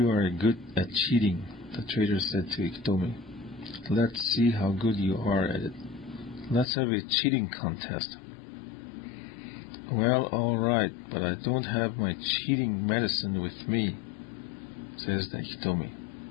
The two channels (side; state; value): right; drops out; at 6.7 s